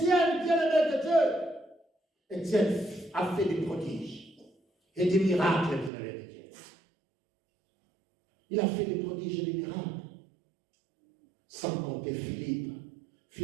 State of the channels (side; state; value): left; drops out; at 5.9 s